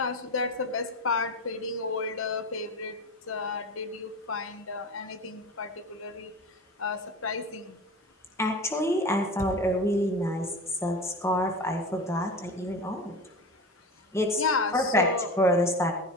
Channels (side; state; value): both; normal; correlation 0.30